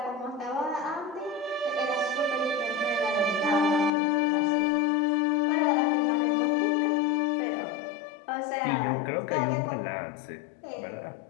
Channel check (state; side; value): drops out; right; at 3.9 s